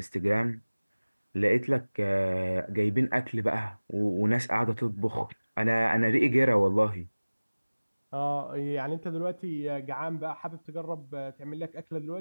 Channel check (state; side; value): inverted; both; correlation -1.00